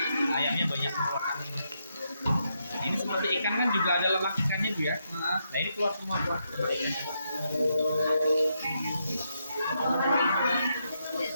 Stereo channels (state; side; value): inverted; both; correlation -0.81